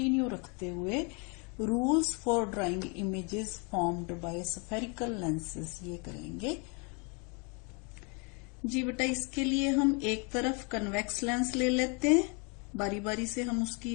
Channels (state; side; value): quieter; right; 33.8 dB